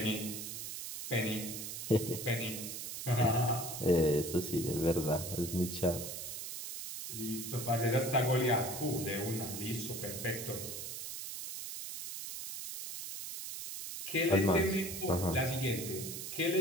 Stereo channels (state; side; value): noise; right; hiss, 7 dB below the sound